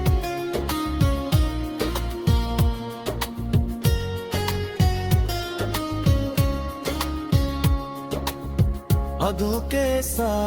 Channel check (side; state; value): both; identical; correlation 1.00